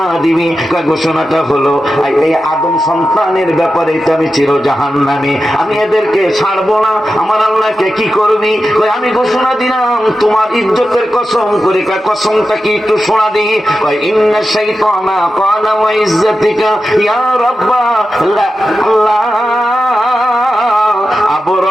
দিবি? ঘোষণাটা হলো এই আদম সন্তানের ব্যাপারে আমি চির জাহান্নামী, আমি এদেরকে ছাড়বো না। আমার আল্লাহকে কি করবি? আমি ঘোষণা দিলাম তোমার ইজ্জতের কসম করে। কসমটা কি একটু শোনা দিই। ইন্না শাইতানা ক্বালা ওয়া ইজ্জাতিকা ইয়া রাব্বা আল্লাহ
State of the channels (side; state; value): both; normal; correlation 0.91